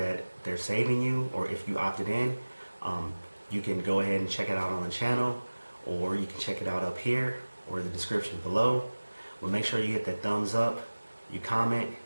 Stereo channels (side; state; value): both; inverted; correlation -1.00